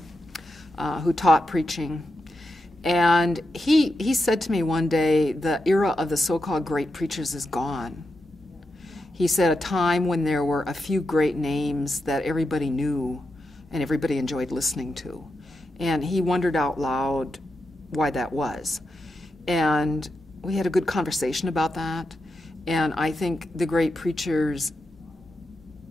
who taught preaching. And he said to me one day, the era of the so-called great preachers is gone. He said a time when there were a few great names that everybody knew and everybody enjoyed listening to. And he wondered out loud why that was. And we had a good conversation about that. And I think the great preachers,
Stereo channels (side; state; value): both; normal; correlation 0.87